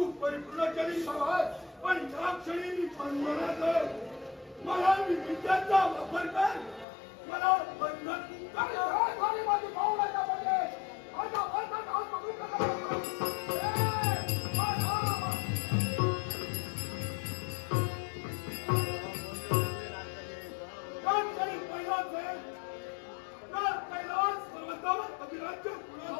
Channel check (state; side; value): drops out; right; at 6.9 s